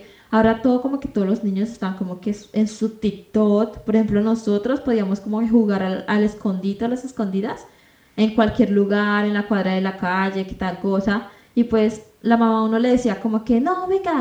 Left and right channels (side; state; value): both; identical; correlation 1.00